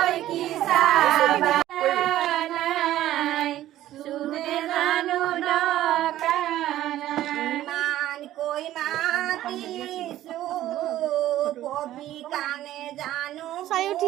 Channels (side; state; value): left; quieter; 13.7 dB